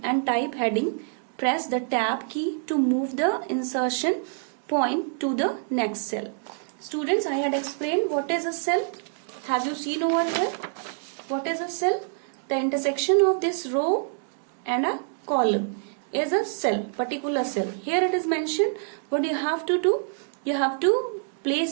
and type heading. Press the tab key to move the insertion point to the next cell. Students, I had explained what is a cell. Have you seen over here? What is a cell? The intersection of this row and a column is a cell, particular cell. Here it is mentioned. What you have to do? You have to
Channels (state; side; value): silent; left; digital silence